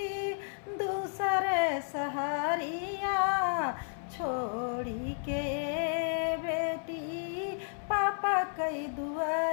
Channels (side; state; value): right; silent; 56 dB below the other